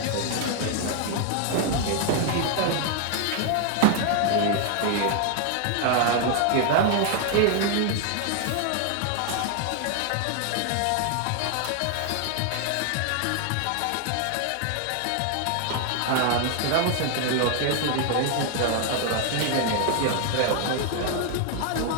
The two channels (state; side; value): different; both; correlation 0.00